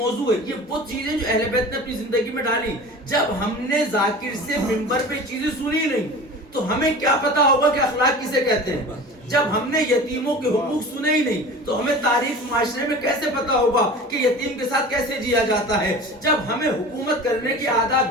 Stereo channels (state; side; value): normal; both; correlation 0.37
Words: ہے. یہ وہ چیزیں جو اہل بیت نے اپنی زندگی میں ڈالی. جب ہم نے ذاکر سے منبر پہ چیزیں سنی نہیں تو ہمیں کیا پتا ہوگا کہ اخلاق کسے کہتے ہیں. جب ہم نے یتیموں کے حقوق سنے ہی نہیں تو ہمیں تاریخ معاشرے میں کیسے پتا ہوگا کہ یتیم کے ساتھ کیسے جیا جاتا ہے. جب ہمیں حکومت کرنے کی